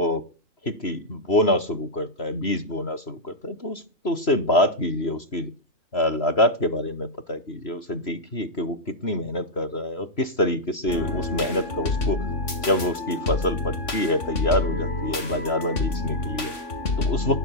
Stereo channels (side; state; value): right; late; 3.5 ms